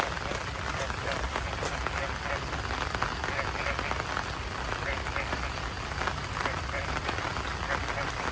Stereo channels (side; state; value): both; identical; correlation 1.00